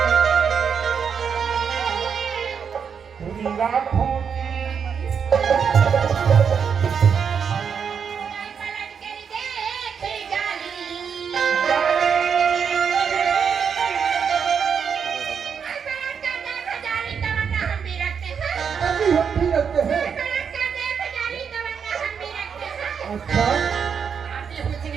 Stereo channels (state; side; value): quieter; left; 6.8 dB